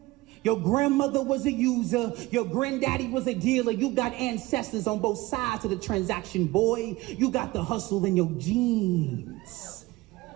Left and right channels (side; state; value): left; quieter; 20.0 dB